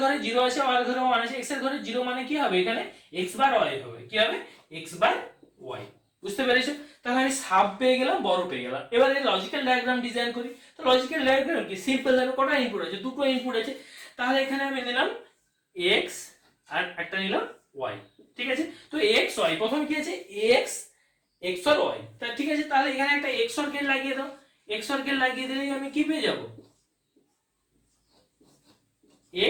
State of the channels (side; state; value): both; identical; correlation 1.00